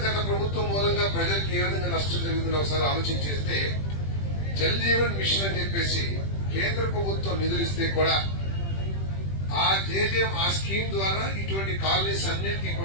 గత ప్రభుత్వం మూలంగా ప్రజలకు ఏ విధంగా నష్టం జరిగిందో ఒకసారి ఆలోచన చేస్తే, జల్ జీవన్ మిషన్ అని చెప్పేసి కేంద్ర ప్రభుత్వం నిధులు ఇస్తే కూడా ఆ జేజేఎం ఆ స్కీమ్ ద్వారా ఇటువంటి కాలనీస్ అన్నిటికీ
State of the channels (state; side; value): late; right; 20 ms